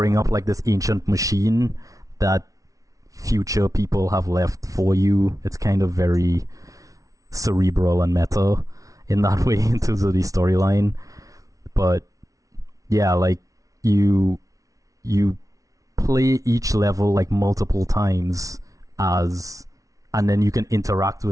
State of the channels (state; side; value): late; left; 0.17 ms